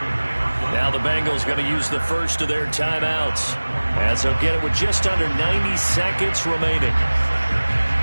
Now the Bengals going to use the first of their timeouts, as they'll get it with just under 90 seconds remaining.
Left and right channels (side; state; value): both; inverted; correlation -1.00